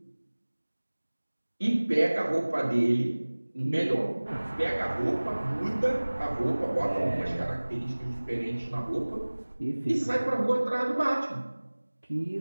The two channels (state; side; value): inverted; both; correlation -1.00